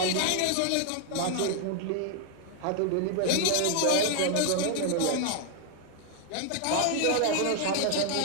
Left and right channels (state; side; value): different; both; correlation 0.00